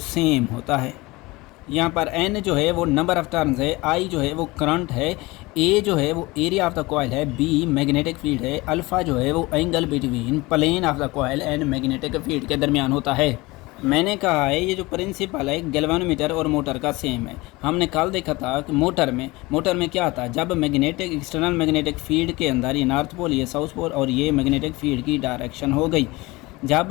सेम होता है। यहाँ पर एन जो है वो नंबर ऑफ टर्न्स है, आई जो है वो करंट है, ए जो है वो एरिया ऑफ द कॉइल है, बी मैग्नेटिक फील्ड है, अल्फ़ा जो है वो angle between plane of the coil and magnetic field के दरमियान होता है। मैंने कहा है ये जो प्रिंसिपल है गैल्वानोमीटर और मोटर का सेम है। हमने कल देखा था कि मोटर में क्या था, जब मैग्नेटिक एक्सटर्नल मैग्नेटिक फील्ड के अंदर ये नॉर्थ पोल, ये साउथ पोल और ये मैग्नेटिक फील्ड की डायरेक्शन हो गई।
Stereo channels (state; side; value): quieter; right; 22.0 dB